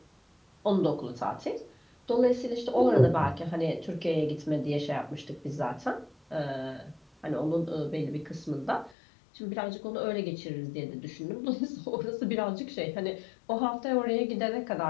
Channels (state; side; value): drops out; right; at 9.0 s